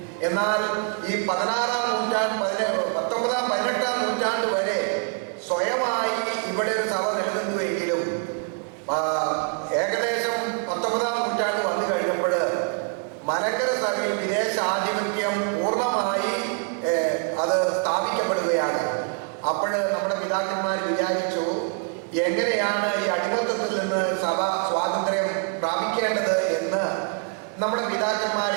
എന്നാൽ ഈ 16-ാം നൂറ്റാണ്ട്, 19-ാം 18-ാം നൂറ്റാണ്ട് വരെ സ്വയമായി ഇവിടെ ഒരു സഭ നിലനിന്നുവെങ്കിലും ഏകദേശം 19-ാം നൂറ്റാണ്ട് വന്നു കഴിഞ്ഞപ്പോൾ മലങ്കര സഭയിൽ വിദേശ ആധിപത്യം പൂർണ്ണമായി അത് സ്ഥാപിക്കപ്പെടുകയാണ്. അപ്പോൾ നമ്മുടെ പിതാക്കന്മാർ വിചാരിച്ചു, എങ്ങനെയാണ് ഈ അടിമത്തത്തിൽ നിന്ന് സഭ സ്വാതന്ത്ര്യം പ്രാപിക്കേണ്ടത് എന്ന് നമ്മുടെ പിതാക്കന്മാർ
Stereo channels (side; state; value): left; quieter; 39.6 dB